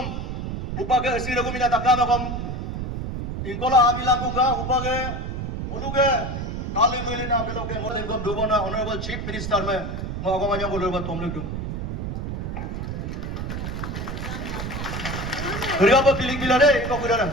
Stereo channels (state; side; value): noise; right; rumble, 4 dB below the sound